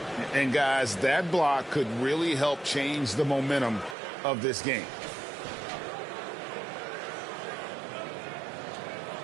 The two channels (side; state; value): left; drops out; at 4.0 s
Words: And guys, that block could really help change the momentum of this game.